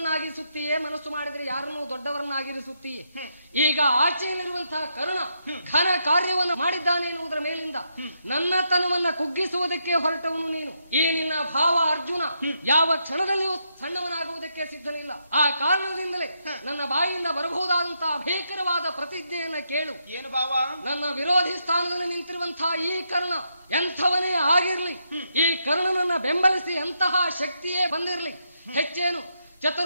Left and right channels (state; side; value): inverted; both; correlation -0.79